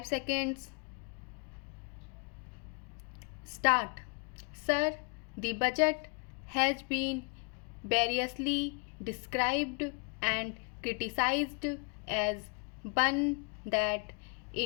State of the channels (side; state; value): right; quieter; 37.1 dB